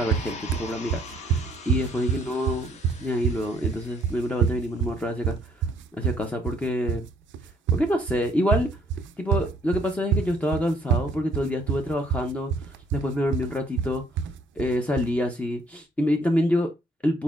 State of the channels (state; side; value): normal; both; correlation 0.64